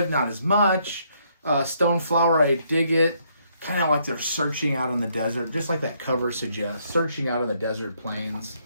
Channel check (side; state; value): both; inverted; correlation -0.71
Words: not as much. Stoneflower, I dig it. Kind of like they're searching out in the desert, just like that cover suggests, searching out in the desert plains.